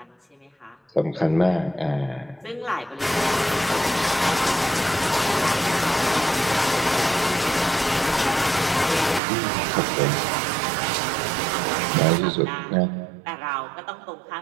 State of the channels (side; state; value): left; drops out; at 9.2 s